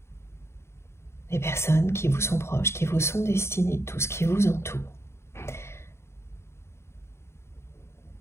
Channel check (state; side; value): late; right; 0.13 ms